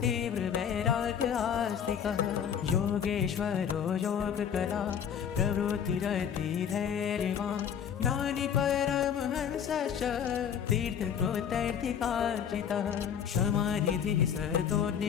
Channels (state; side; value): quieter; right; 8.2 dB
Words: वैराग्य आस्तिकः योगेश्वरो योगकला प्रवृत्तिरति धैर्यवान् ज्ञानी परमहंसश्च तीर्थकृतैर्थिकार्जितः क्षमानिधिः